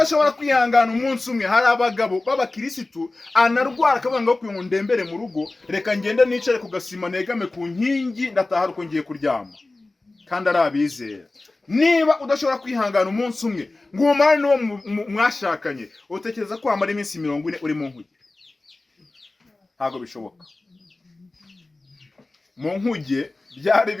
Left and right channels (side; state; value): right; quieter; 3.1 dB